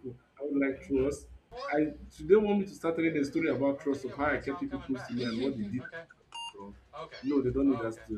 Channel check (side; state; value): both; identical; correlation 1.00